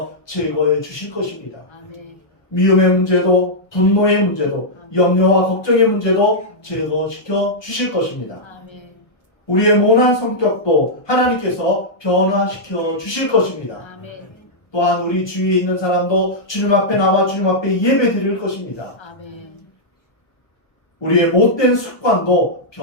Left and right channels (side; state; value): right; late; 1.2 ms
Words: 제거해 주실 것입니다. 아멘. 미움의 문제도 분노의 문제도 염려와 걱정의 문제도 제거시켜 주실 것입니다. 아멘. 우리의 모난 성격도 하나님께서 변화시켜 주실 것입니다. 아멘. 또한 우리 주위에 있는 사람도 주님 앞에 나와 주님 앞에 예배 드릴 것입니다. 아멘. 우리의 못된 습관도